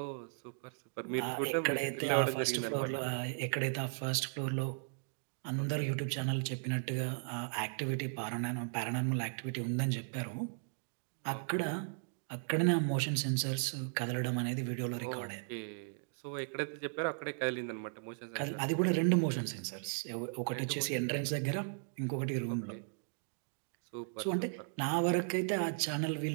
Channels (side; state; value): left; silent; digital silence